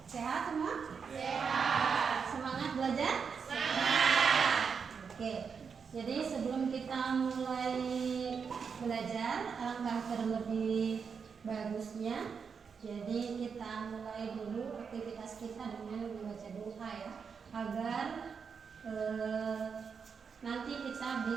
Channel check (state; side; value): quieter; left; 6.1 dB